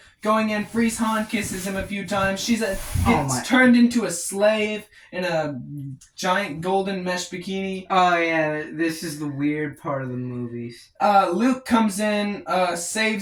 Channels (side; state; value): both; identical; correlation 1.00